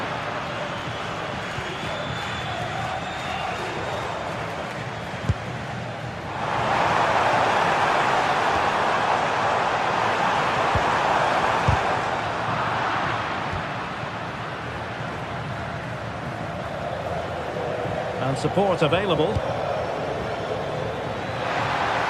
And support available.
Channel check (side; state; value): both; identical; correlation 1.00